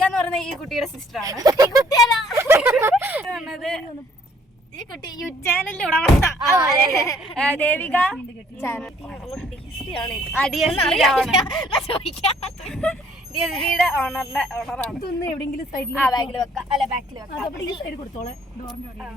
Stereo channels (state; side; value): normal; both; correlation 0.61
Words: എന്ന് പറയുന്ന ഈ കുട്ടിയുടെ സിസ്റ്ററാണ്. ഈ കുട്ടി യൂട്യൂബ് ദേവിക ഡിയുടെ ഓണറാണ്. എവിടെയെങ്കിലും സൈഡിൽ ബാഗിൽ വെക്കാം, അല്ല ബാക്കിൽ വെക്കാം.